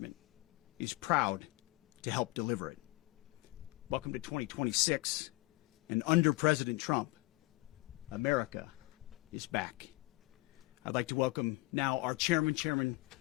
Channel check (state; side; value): quieter; right; 22.4 dB